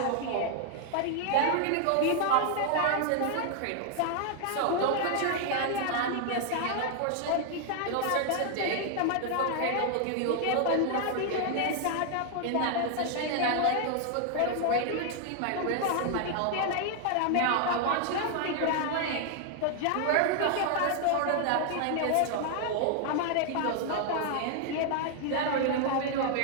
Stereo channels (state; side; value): different; both; correlation 0.00